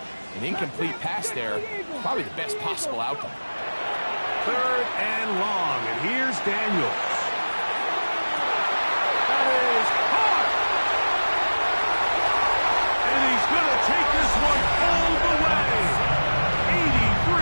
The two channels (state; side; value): inverted; both; correlation -1.00